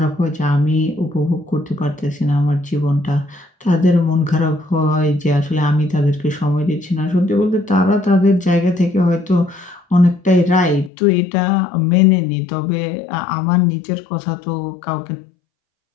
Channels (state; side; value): drops out; right; at 10.9 s